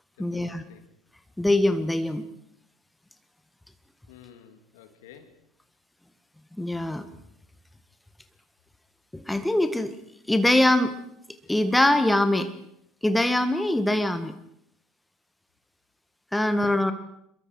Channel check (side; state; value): both; normal; correlation 0.94